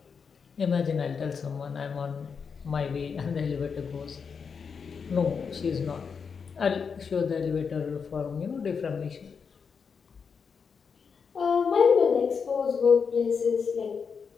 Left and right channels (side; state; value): right; quieter; 6.0 dB